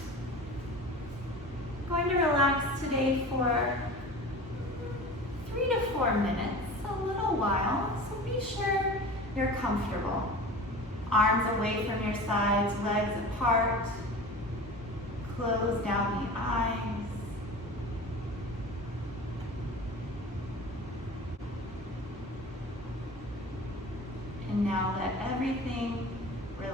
I'm going to relax today for 3 to 4 minutes, a little while, so be sure you're comfortable. Arms away from your sides, legs apart. Close down the eyes. And now let everything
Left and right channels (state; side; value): normal; both; correlation 0.36